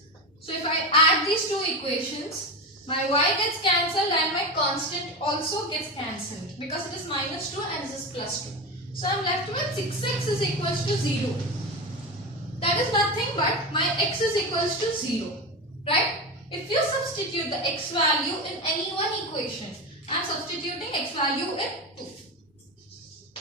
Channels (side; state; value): both; normal; correlation 0.20